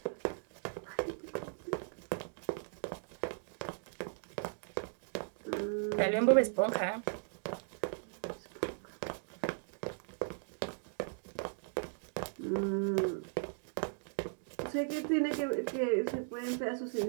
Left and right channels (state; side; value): silent; left; digital silence